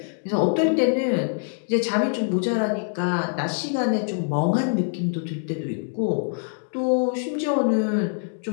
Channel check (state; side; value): silent; right; 62 dB below the other